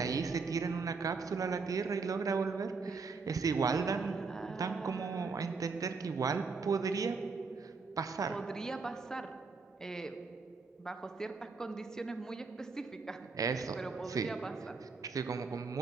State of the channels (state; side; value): quieter; left; 4.5 dB